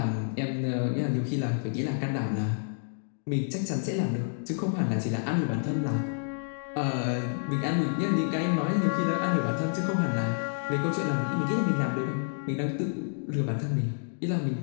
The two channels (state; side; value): silent; right; digital silence